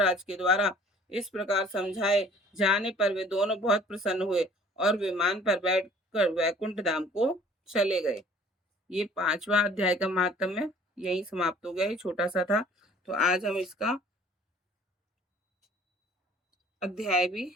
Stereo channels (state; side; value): normal; both; correlation 0.52